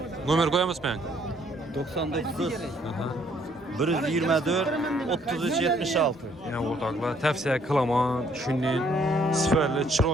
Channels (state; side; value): normal; both; correlation 0.65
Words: Nomer qo'yamizmi? 99 124 33 76. Yani o'rtoqlar, tavsiya qilaman. Shunday sifatli,